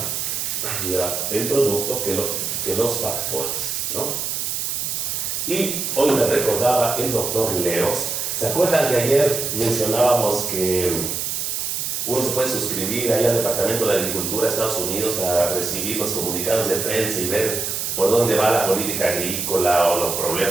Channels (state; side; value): noise; right; hiss, 2 dB below the sound